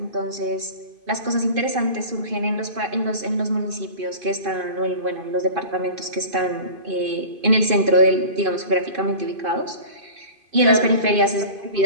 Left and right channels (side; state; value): left; late; 2.5 ms